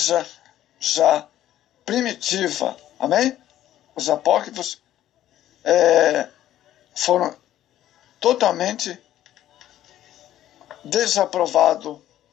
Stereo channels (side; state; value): right; quieter; 12.7 dB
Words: já primitiva. Amém? Os apócrifos foram totalmente desaprovados,